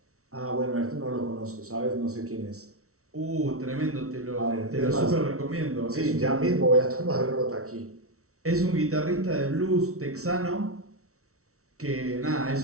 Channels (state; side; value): late; left; 0.64 ms